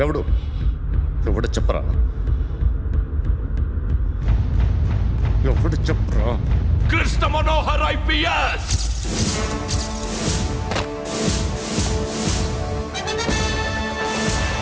ఎవడు చెప్పరా? ఎవడు చెప్పరా? Krishna Manohar IPS.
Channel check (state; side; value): identical; both; correlation 1.00